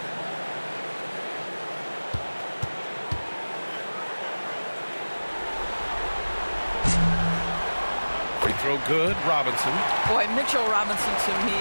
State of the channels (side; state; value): both; inverted; correlation -1.00